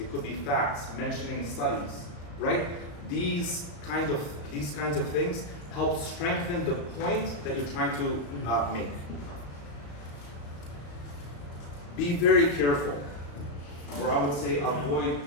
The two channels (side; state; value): right; late; 35 ms